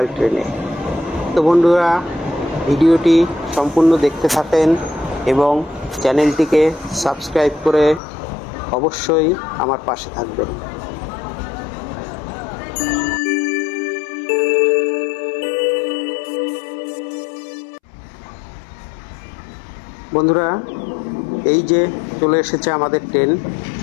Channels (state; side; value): drops out; right; at 8.0 s